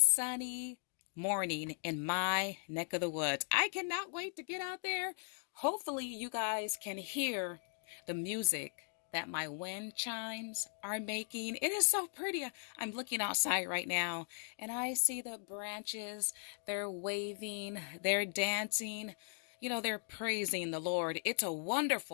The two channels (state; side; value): silent; right; 53 dB below the other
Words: morning in my neck of the woods. I cannot wait to get out there. Hopefully, you guys can hear the music that my wind chimes are making. It is so pretty. I'm looking outside right now and I see the branches. They're waving, they're dancing. They're praising the Lord. It's a